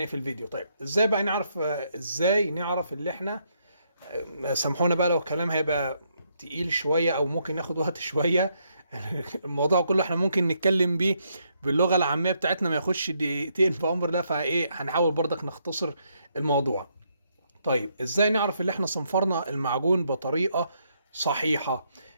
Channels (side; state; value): both; inverted; correlation -0.75